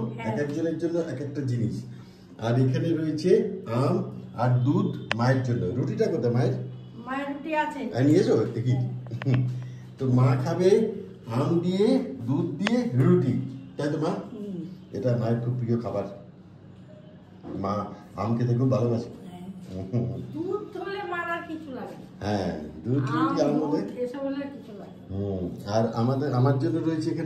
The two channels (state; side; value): identical; both; correlation 1.00